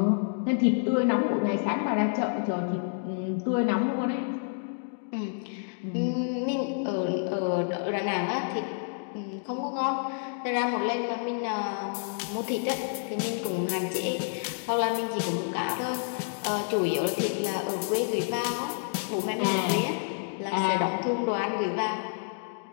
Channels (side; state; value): right; silent; digital silence